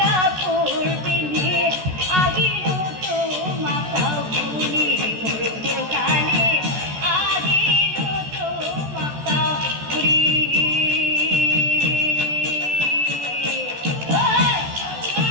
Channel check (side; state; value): left; late; 14 ms